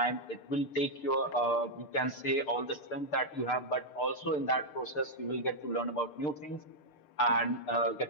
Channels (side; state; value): right; late; 6.7 ms